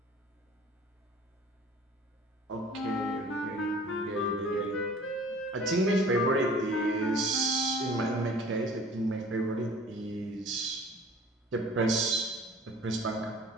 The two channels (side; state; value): both; normal; correlation 0.47